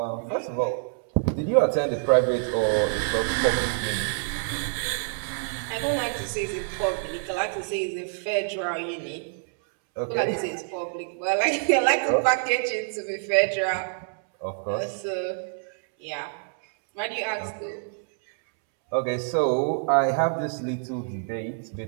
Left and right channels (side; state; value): left; silent; 61 dB below the other